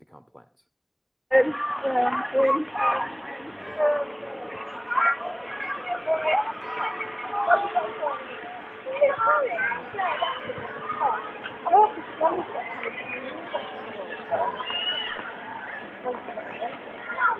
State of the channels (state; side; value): identical; both; correlation 1.00